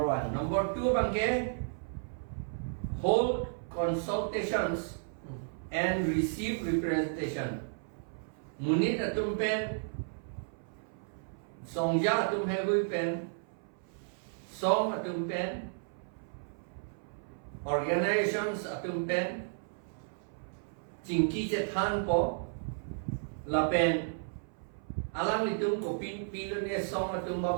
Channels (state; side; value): silent; left; 56 dB below the other